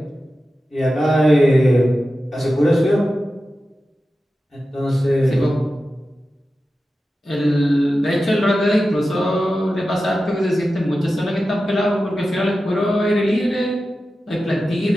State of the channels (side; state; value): both; normal; correlation 0.93